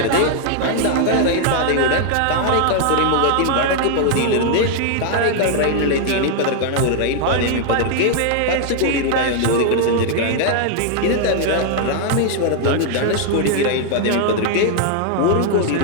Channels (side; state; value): both; different; correlation 0.00